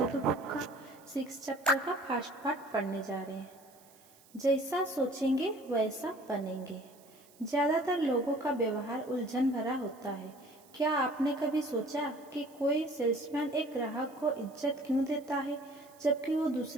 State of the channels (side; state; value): right; noise; hiss, 26 dB below the sound